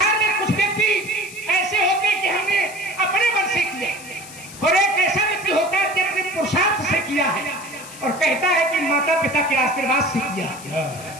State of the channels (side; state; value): left; noise; hiss, 16 dB below the sound